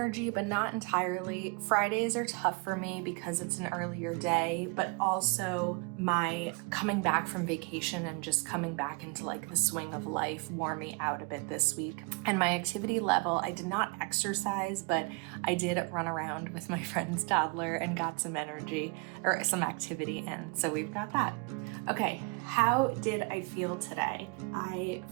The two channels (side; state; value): left; quieter; 30.9 dB